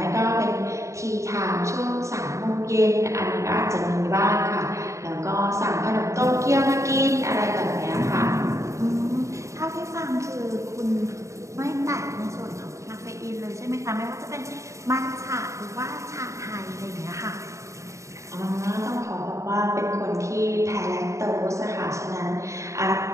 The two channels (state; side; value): late; left; 0.15 ms